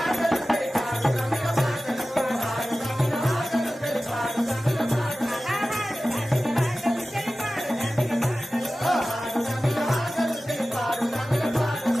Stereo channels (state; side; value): normal; both; correlation 0.96